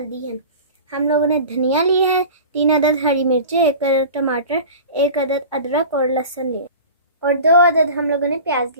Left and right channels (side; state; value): both; inverted; correlation -0.37